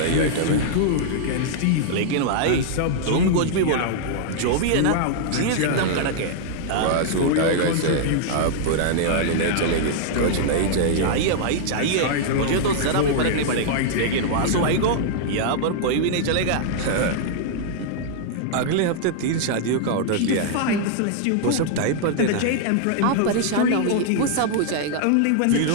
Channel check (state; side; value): different; both; correlation -0.01